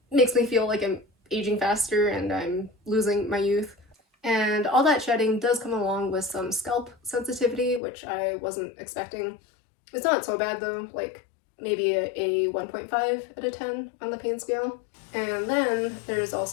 makes me feel like I'm aging faster and I'm losing my youth. And all that shedding does come along with some scalp sensitivity, which I wasn't expecting. It's not so bad though, like maybe a 1.5 out of 10 on the pain scale. And then there's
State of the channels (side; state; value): right; drops out; at 7.8 s